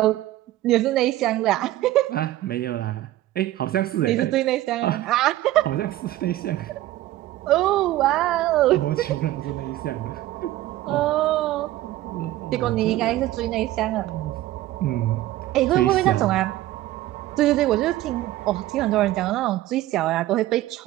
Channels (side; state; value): left; quieter; 15.3 dB